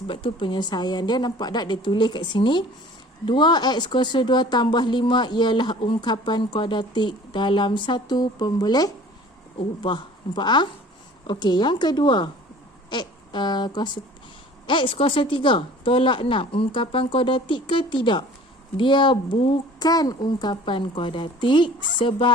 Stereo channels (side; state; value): both; normal; correlation 0.47